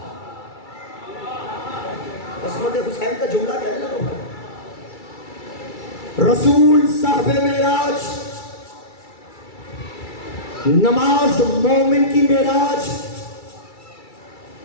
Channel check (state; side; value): late; right; 2.3 ms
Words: عصمت حسین کا جملہ کہنے لگا. رسول صاحب معراج، نماز مومن کی معراج،